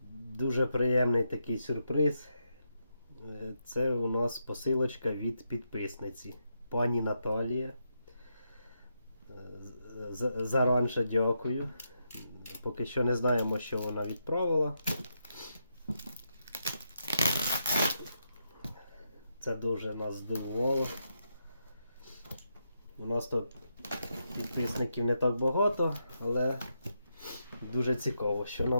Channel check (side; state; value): both; inverted; correlation -0.82